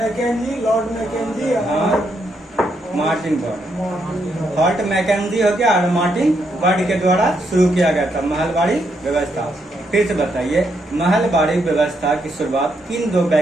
लॉर्ड मैकेंजी और मार्टिन बर्ड। हॉर्ट मैकेंजी हो गया और मार्टिन बर्ड के द्वारा शुरू किया गया था महलवाड़ी व्यवस्था। फिर से बताइए महलवाड़ी व्यवस्था की शुरुआत किन दो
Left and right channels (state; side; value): normal; both; correlation 0.78